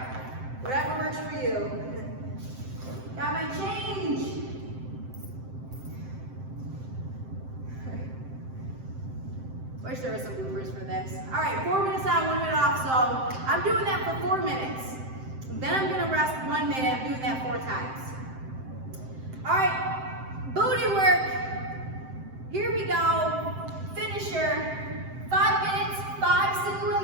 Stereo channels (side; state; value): left; late; 7.7 ms